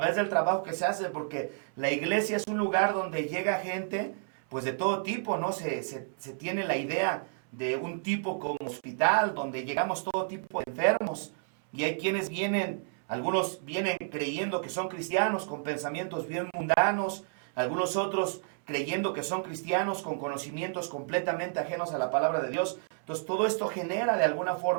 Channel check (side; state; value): left; silent; 57 dB below the other